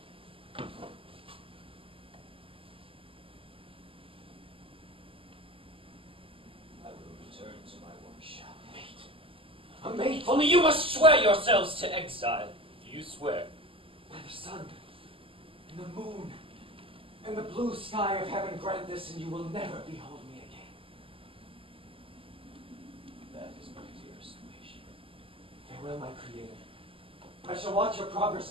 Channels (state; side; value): late; left; 0.26 ms